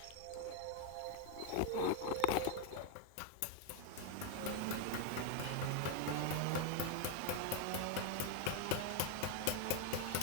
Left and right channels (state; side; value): different; both; correlation 0.01